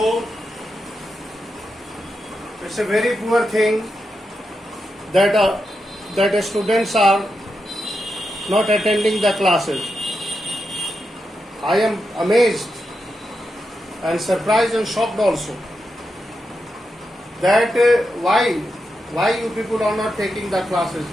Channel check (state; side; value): normal; both; correlation 0.87